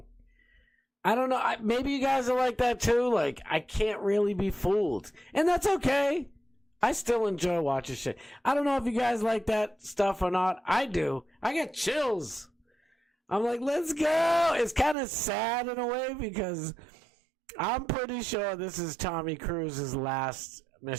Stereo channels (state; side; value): drops out; left; at 15.0 s